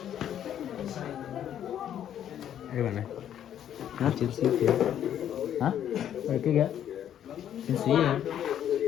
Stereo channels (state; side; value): quieter; right; 10.2 dB